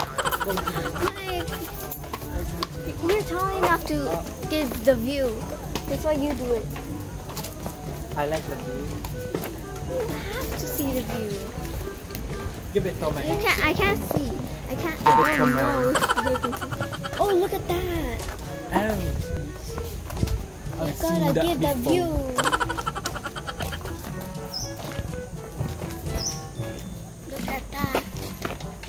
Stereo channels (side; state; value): both; identical; correlation 1.00